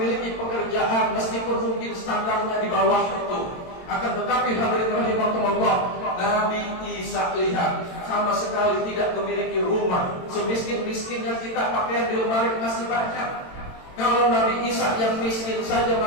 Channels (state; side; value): late; right; 22 ms